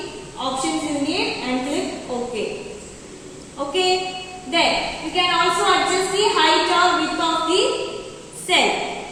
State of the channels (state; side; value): identical; both; correlation 1.00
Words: options you need and click OK. Okay. Then you can also adjust the height or width of the cell.